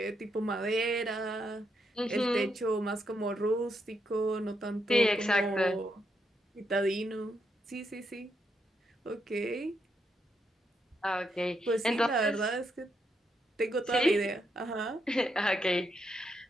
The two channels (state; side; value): normal; both; correlation 0.80